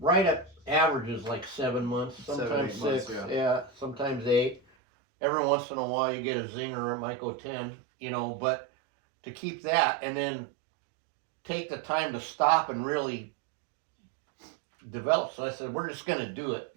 at averages like 7 months, 7, sometimes 8 months, 6, yeah. sometimes 8. Every once in a while you get a zinger, it might go 10, you know, but to keep that and then take the time to stop and really develop. So I said, we're just gonna do it.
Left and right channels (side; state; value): left; drops out; at 4.6 s